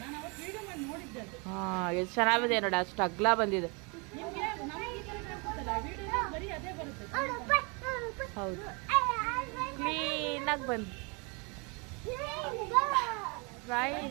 ಹಾ ಎಷ್ಟು ಚೆನ್ನಾಗಿದೆ ನೋಡಿ, ಅಷ್ಟು ಅಗ್ಲ ಬಂದಿದೆ. ಹೌದು, ಕ್ಲೀನಾಗಿ ಬಂದು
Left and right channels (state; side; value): quieter; left; 31.6 dB